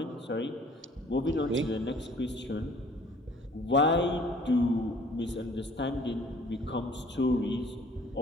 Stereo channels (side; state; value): both; normal; correlation 0.54